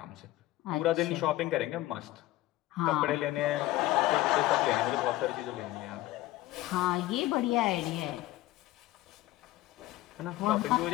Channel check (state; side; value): quieter; right; 16.7 dB